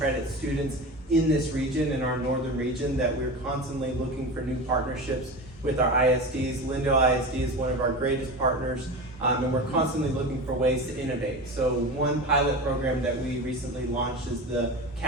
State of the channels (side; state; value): both; normal; correlation 0.27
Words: students in this region, in our northern region, that we're constantly looking for new partnerships with our ISDs. Lindale ISD is one of our greatest partners, and we're constantly looking for ways to innovate. So one pilot program that we recently launched is the